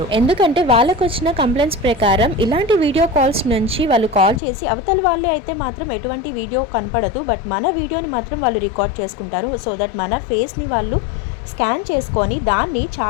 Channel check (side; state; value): right; drops out; at 4.4 s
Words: ఎందుకంటే వాళ్ళకు వచ్చిన కంప్లైంట్స్ ప్రకారం ఇలాంటి వీడియో కాల్స్ నుంచి వాళ్ళు కాల్ చేసి అవతల వాళ్ళు అయితే మాత్రం ఎటువంటి వీడియో కనపడదు, బట్ మన వీడియోని మాత్రం వాళ్ళు రికార్డ్ చేసుకుంటారు. సో దట్ మన ఫేస్ని వాళ్ళు స్కాన్ చేసుకొని దాన్ని